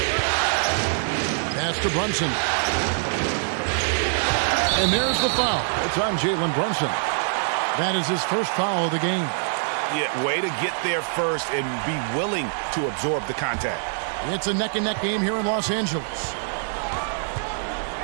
Pass to Brunson. And there's the foul. It's on Jalen Brunson. That is his first foul of the game. Yeah, way to get there first and be willing to absorb the contact. It's a neck-and-neck game here in Los Angeles.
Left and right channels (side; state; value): left; silent; digital silence